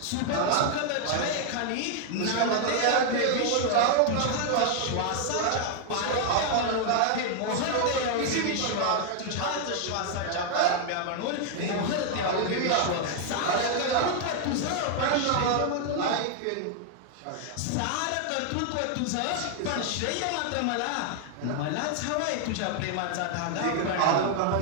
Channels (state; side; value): different; both; correlation 0.00